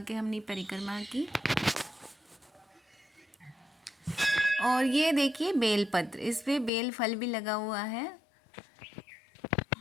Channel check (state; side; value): drops out; right; at 6.7 s